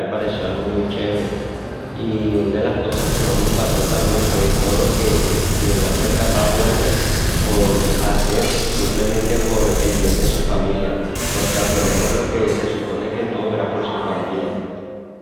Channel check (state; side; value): identical; both; correlation 1.00